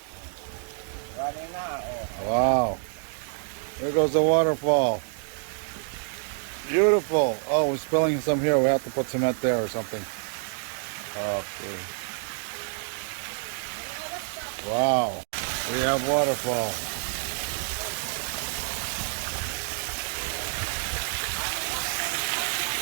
Wow. There goes the waterfall. Beautiful. Oh, we're spilling some here. We have to put cement there or something. Okay. Wow. We have waterfall.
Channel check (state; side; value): silent; left; digital silence